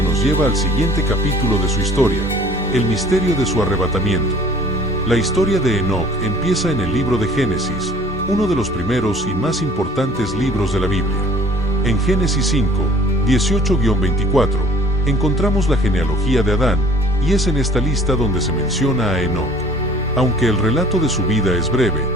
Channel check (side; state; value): both; normal; correlation 0.50